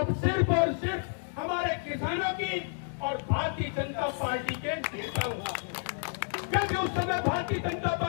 सिर्फ और सिर्फ हमारे किसानों की और भारतीय जनता पार्टी के नेताओं की। क्योंकि उस समय भारतीय जनता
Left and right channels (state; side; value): silent; right; 58 dB below the other